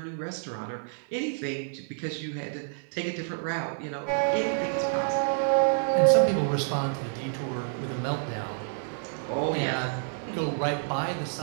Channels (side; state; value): left; silent; digital silence